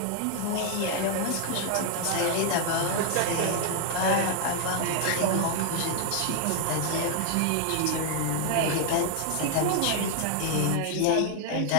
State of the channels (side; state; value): both; different; correlation 0.00